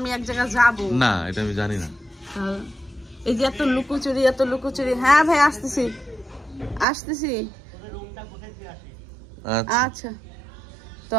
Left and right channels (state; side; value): drops out; left; at 6.9 s